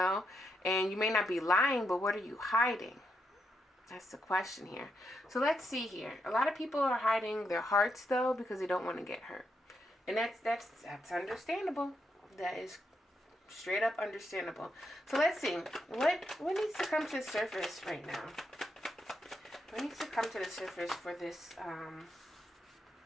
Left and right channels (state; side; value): normal; both; correlation 0.81